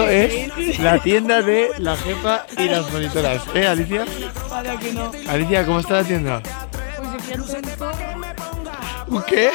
es la tienda de la jefa y las monitoras. Alicia? Para que no. Alicia, ¿cómo está la tienda? Pues yo quiero un zorro. ¿Un qué?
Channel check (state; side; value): silent; right; 62 dB below the other